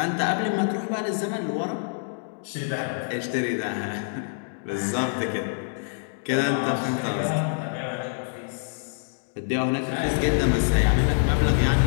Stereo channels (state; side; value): silent; right; digital silence